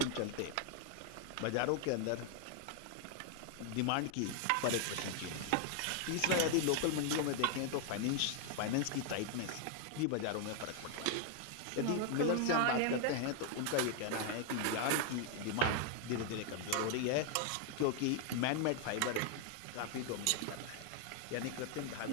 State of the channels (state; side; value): different; both; correlation 0.00